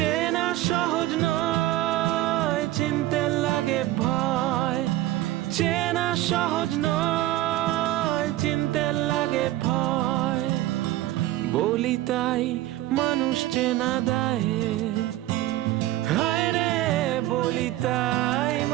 সহজ নয়, চিনতে লাগে ভয়। চেনা সহজ নয়, চিনতে লাগে ভয়। বলি তাই মানুষ চেনা দেয়, হায় রে বলি তাই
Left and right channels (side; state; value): left; quieter; 15.7 dB